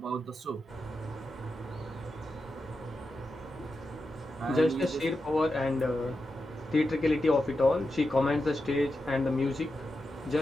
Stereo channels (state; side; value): normal; both; correlation 0.89